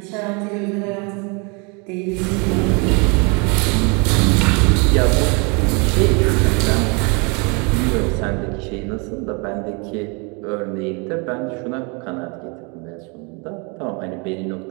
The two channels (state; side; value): quieter; left; 32.0 dB